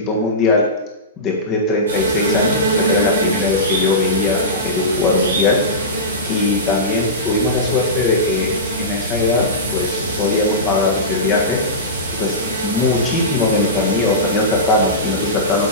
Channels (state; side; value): normal; both; correlation -0.19